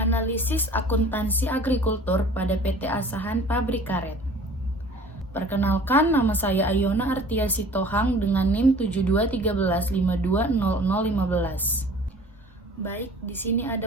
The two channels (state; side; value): normal; both; correlation 0.47